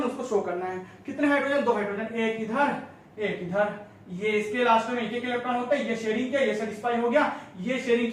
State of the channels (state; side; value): identical; both; correlation 1.00